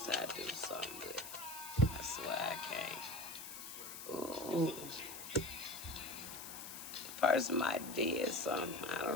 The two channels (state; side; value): noise; left; hiss, 10 dB below the sound